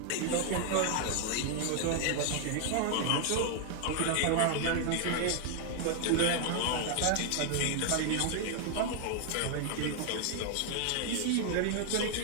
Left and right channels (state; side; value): different; both; correlation 0.00